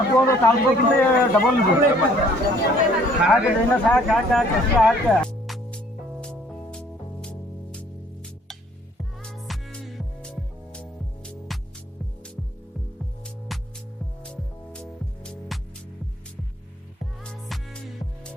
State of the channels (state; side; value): normal; both; correlation 0.59